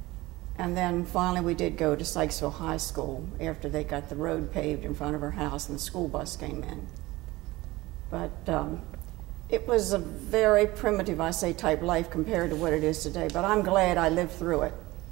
And then finally we did go to Sykesville High School after they got the road paved in front of our house and the school bus came in. But it was a very primitive, I say, type life compared to what it is today. But I'm glad I lived through it.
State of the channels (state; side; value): quieter; left; 19.6 dB